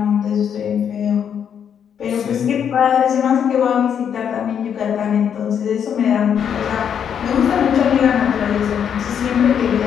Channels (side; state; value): right; quieter; 8.2 dB